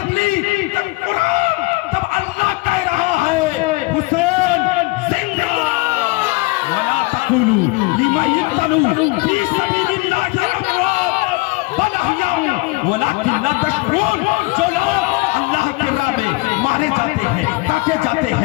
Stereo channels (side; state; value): right; quieter; 23.9 dB